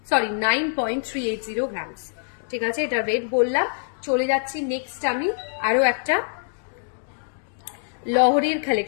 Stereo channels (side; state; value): right; silent; digital silence